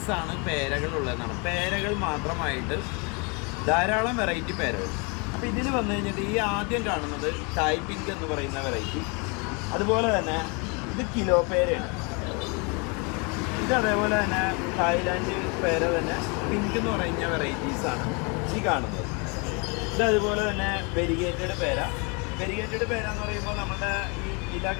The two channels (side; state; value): right; quieter; 32.0 dB